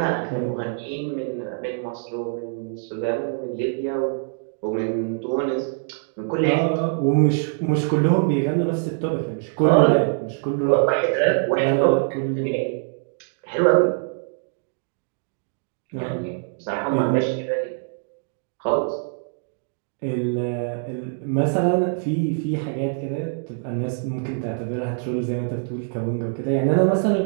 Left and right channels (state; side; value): silent; left; digital silence